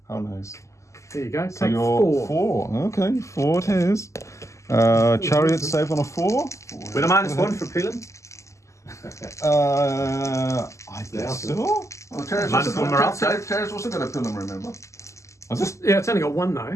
How nice. There you go. So Take you're 4. 4. Okay, 4 it is. Chariot save on a 4. With a -1 for peeling. I guess so. Oh, Terrace Minus also, one morale Terrace also got a pillar, remember? Yeah, it's only got 1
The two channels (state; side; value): late; right; 0.14 ms